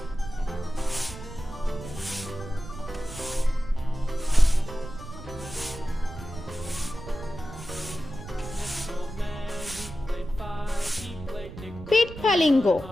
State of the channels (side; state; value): right; noise; rumble, 12 dB below the sound